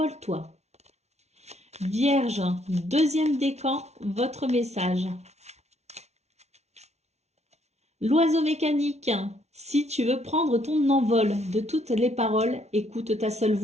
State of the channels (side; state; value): left; late; 0.32 ms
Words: Vierge, deuxième décan, votre message. L'oiseau mécanique. Si tu veux prendre ton envol de toutes les paroles, écoute ta seule